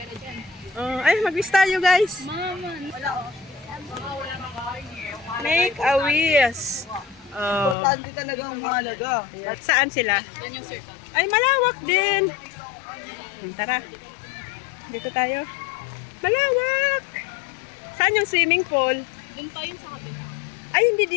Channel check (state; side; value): drops out; right; at 7.8 s